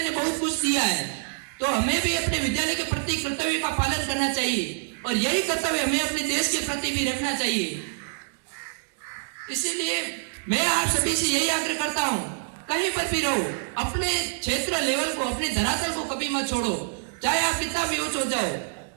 ने बहुत कुछ दिया है, तो हमें भी अपने विद्यालय के प्रति कर्तव्य का पालन करना चाहिए और यही कर्तव्य हमें अपने देश के प्रति भी रखना चाहिए। इसीलिए मैं आप सभी से यही आग्रह करता हूं, कहीं पर भी रहो, अपने क्षेत्र लेवल को, अपने धरातल को कभी मत छोड़ो, चाहे आप कितना भी ऊंच हो जाओ,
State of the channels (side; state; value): left; silent; digital silence